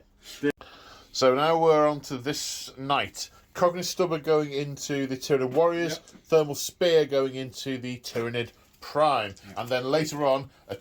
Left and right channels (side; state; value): both; identical; correlation 1.00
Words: so now we're on to this night. Cognate Stubber going into the Tyranid Warriors. Yep. Thermal Spear going into the Tyranid Prime. And then later on, a